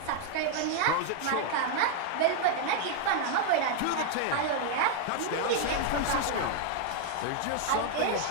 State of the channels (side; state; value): both; different; correlation 0.00